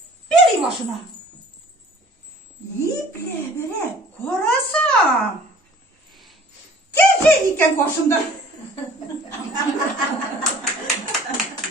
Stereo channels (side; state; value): both; normal; correlation 0.50